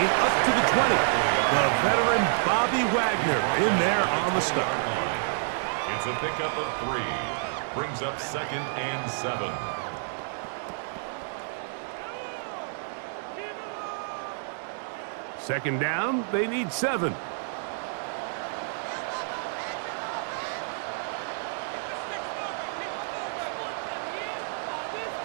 up to the 20. The veteran Bobby Wagner in there on the start. It's a pickup of 3. Brings up second and 7. Second down, they need 7.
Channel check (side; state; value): left; silent; digital silence